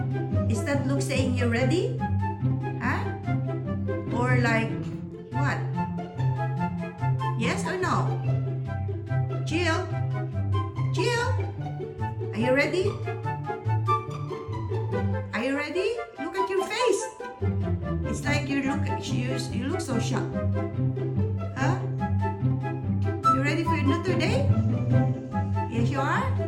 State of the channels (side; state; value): both; identical; correlation 1.00